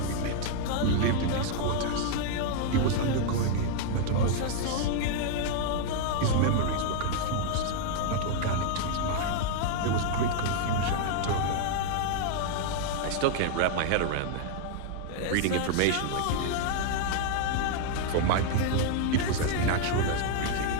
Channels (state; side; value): different; both; correlation 0.00